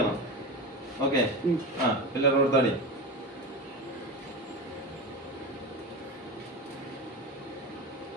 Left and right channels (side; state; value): both; normal; correlation 0.24